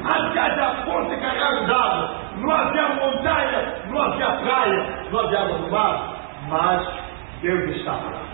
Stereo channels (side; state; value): left; silent; digital silence